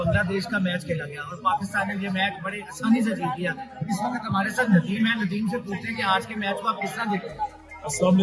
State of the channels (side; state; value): both; identical; correlation 1.00